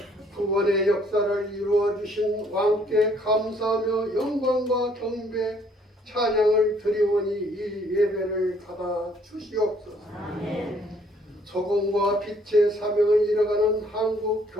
구원의 역사를 이루어 주신 왕께 감사하며 영광과 경배 찬양을 드리오니 이 예배를 받아 주시옵소서. 소금과 빛의 사명을 이뤄가는 한국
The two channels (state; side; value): normal; both; correlation 0.63